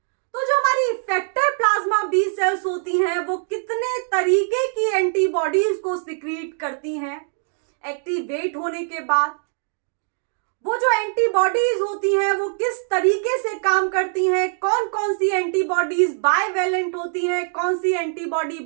तो जो हमारी इफेक्टर प्लाज्मा बी सेल्स होती हैं वो कितने तरीके की एंटीबॉडीज को सिक्रीट करती हैं एक्टिवेट होने के बाद। वो जो एंटीबॉडीज होती हैं वो किस तरीके से काम करती हैं, कौन कौन सी एंटीबॉडीज बाइवेलेंट होती हैं, कौन सी एंटीबॉडी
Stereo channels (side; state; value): left; silent; digital silence